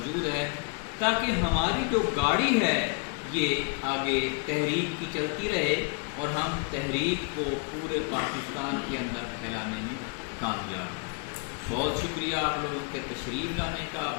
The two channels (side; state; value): right; quieter; 34.5 dB